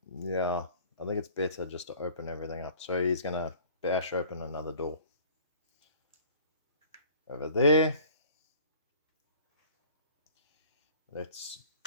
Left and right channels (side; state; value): both; inverted; correlation -0.50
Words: yeah, I think it's better just to open everything up. So he's going to bash open another door. Over there. Let's